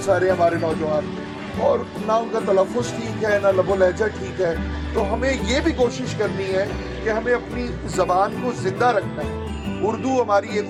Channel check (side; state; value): both; identical; correlation 1.00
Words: سارے ہمارے نوجوان, اور نہ ان کا تلفظ ٹھیک ہے, نہ لب و لہجہ ٹھیک ہے. تو ہمیں یہ بھی کوشش کرنی ہے کہ ہمیں اپنی زبان کو زندہ رکھنا ہے. اردو ہماری